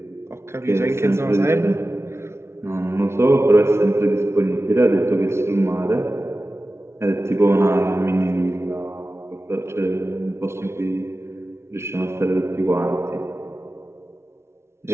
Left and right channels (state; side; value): late; left; 0.13 ms